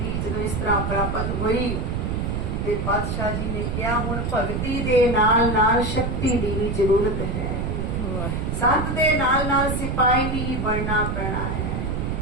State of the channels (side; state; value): right; noise; rumble, 1 dB below the sound